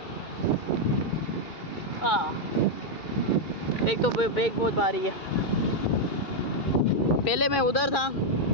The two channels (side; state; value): right; late; 2.4 ms